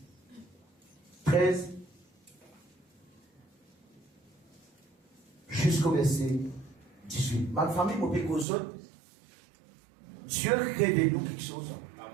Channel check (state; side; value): drops out; left; at 8.5 s